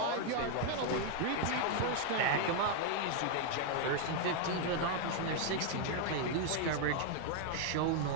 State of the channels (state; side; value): different; both; correlation 0.00